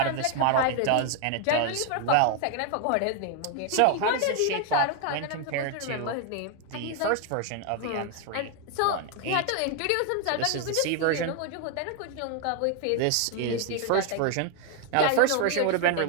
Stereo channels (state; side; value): different; both; correlation 0.01